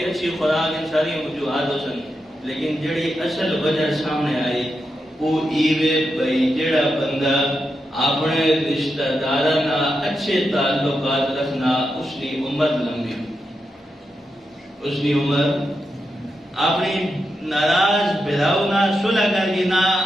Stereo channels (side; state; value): both; normal; correlation 0.86